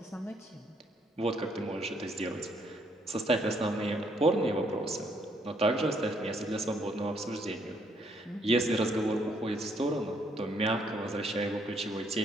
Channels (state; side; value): normal; both; correlation 0.69